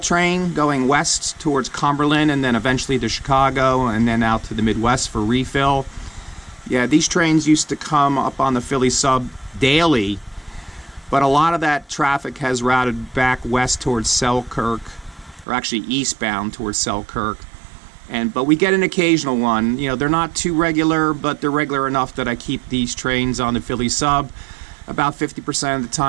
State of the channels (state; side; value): drops out; left; at 15.5 s